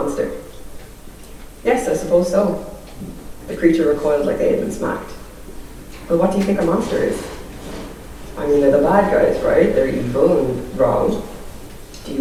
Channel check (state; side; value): identical; both; correlation 1.00